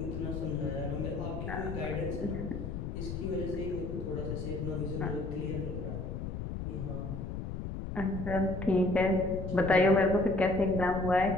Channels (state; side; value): noise; left; rumble, 5 dB below the sound